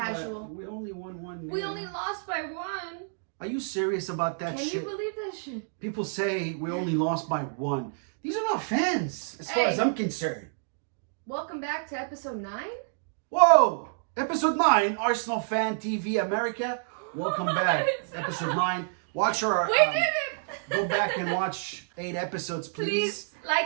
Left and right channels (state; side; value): silent; left; digital silence